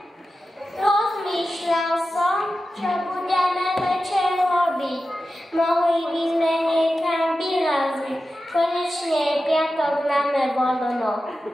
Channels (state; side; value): normal; both; correlation 0.93